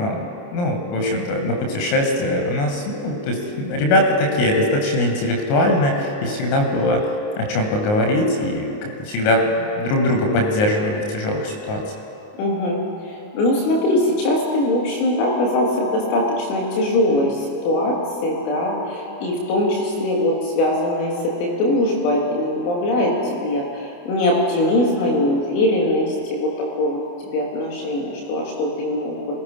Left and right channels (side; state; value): right; late; 29 ms